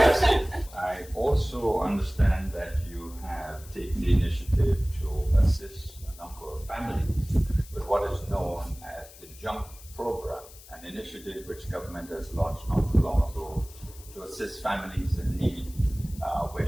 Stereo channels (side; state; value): left; noise; hiss, 20 dB below the sound